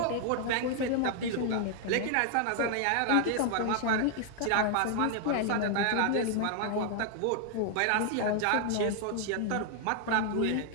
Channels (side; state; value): both; different; correlation 0.00